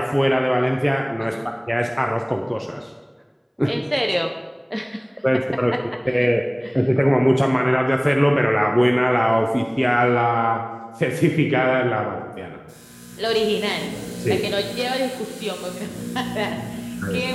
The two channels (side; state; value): both; identical; correlation 1.00